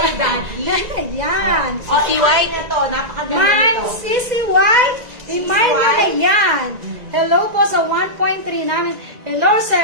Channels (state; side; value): late; left; 1.9 ms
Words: Daddy. Yan. Si White na to. Napakaganda Mine, nito. Sisi White. Imay nyo na yan. Hello po sa 1.3 namin. Hello,